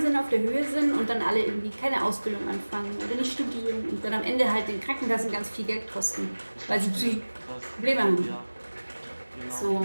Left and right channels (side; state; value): both; inverted; correlation -1.00